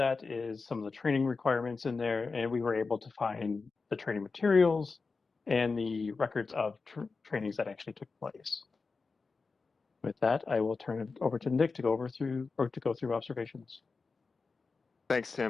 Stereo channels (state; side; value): quieter; right; 4.3 dB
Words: is some of the training requirements in there, and we were able to find the training materials and the records of trainings that actually took place. With that, I will turn it over to Nick to go through observations. Thanks,